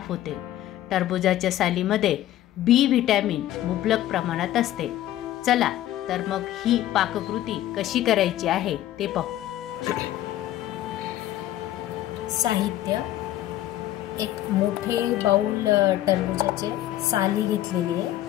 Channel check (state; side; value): quieter; right; 13.5 dB